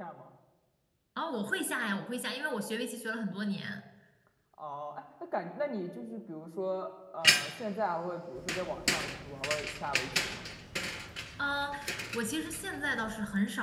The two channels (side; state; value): both; identical; correlation 1.00